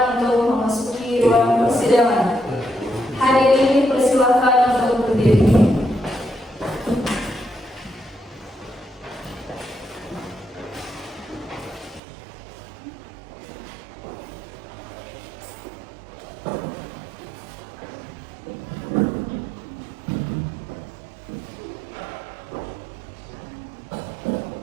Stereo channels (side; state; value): left; drops out; at 12.0 s